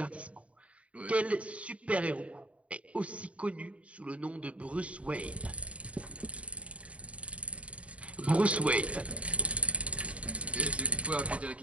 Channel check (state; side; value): late; left; 0.064 ms